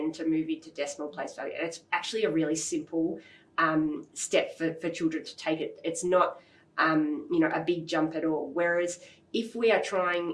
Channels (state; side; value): identical; both; correlation 1.00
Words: to move into decimal place value. And it's actually a really simple step for children to take it. It's not a big jump at all. Whereas if we are trying